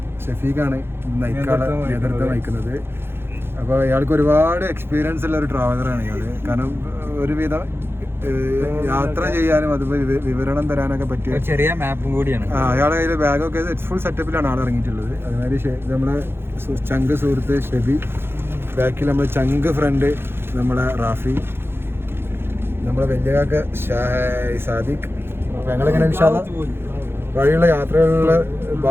ഷഫീഖാണ് നേതൃത്വം വഹിക്കുന്നത്. അപ്പോൾ ഇയാൾക്ക് ഒരുപാട് എക്സ്പീരിയൻസ് ഉള്ള ഒരു ട്രാവലറാണ് ഇയാള്. കാരണം ഒരുവിധം യാത്ര ചെയ്യാനും അതുപോലെ വിവരണം തരാനൊക്കെ പറ്റിയ ചെറിയ മാപ്പും കൂടിയാണ്. അയാളുടെ കയ്യിൽ ബാഗൊക്കെ ഫുൾ സെറ്റപ്പിലാണ് ആൾ ഇറങ്ങിയിട്ടുള്ളത്. അതുമാതിരി നമ്മളെ ചങ്ക് സുഹൃത്ത് ഷെബി, ബാക്കിൽ നമ്മളെ ചങ്ക് ഫ്രണ്ട് നമ്മളെ റാഫി, നമ്മളെ വലിയകാക്ക സാദിഖ്. അപ്പോൾ ഞങ്ങളിങ്ങനെ ഇൻഷാല്ല വഴിയുള്ള യാത്രകളിലുള്ള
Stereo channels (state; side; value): late; left; 0.11 ms